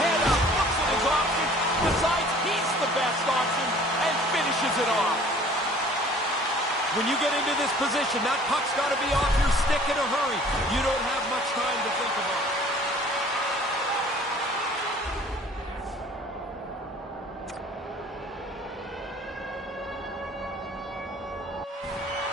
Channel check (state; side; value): normal; both; correlation 0.50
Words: Head up, looks at his options, decides he's the best option, and finishes it off. When you get into this position, that puck's got to be off your stick in a hurry. You don't have much time to think about it.